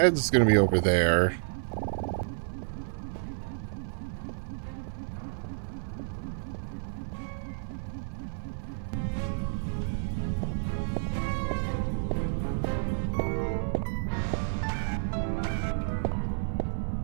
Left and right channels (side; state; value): left; silent; 58 dB below the other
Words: gonna be over there.